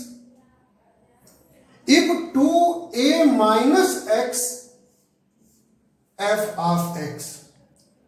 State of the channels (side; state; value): both; identical; correlation 1.00